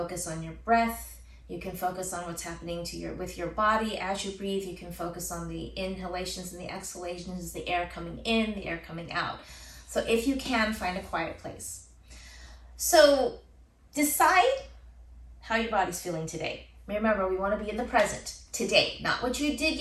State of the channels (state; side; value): identical; both; correlation 1.00